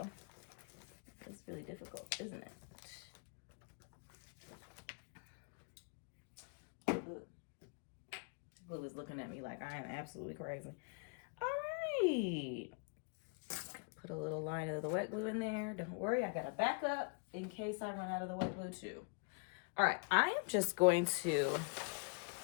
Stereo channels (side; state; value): right; quieter; 34.8 dB